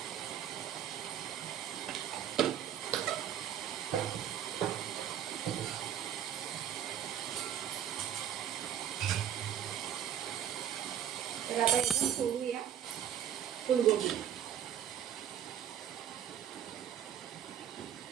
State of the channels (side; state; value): left; quieter; 10.0 dB